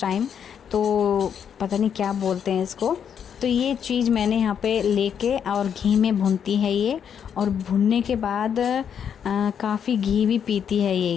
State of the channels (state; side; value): quieter; right; 8.0 dB